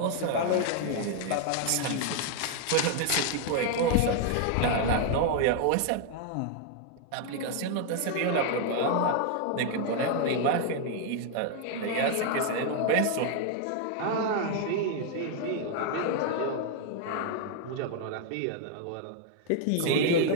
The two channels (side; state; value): both; different; correlation 0.00